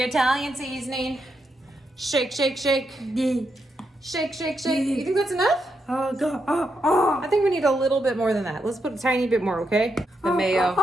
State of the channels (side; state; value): both; normal; correlation 0.82